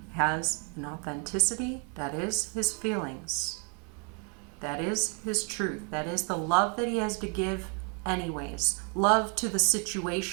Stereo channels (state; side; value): quieter; left; 37.3 dB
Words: has an authenticity that is his feelings. That is his truth. That is the love that he has to give anyways. Love to the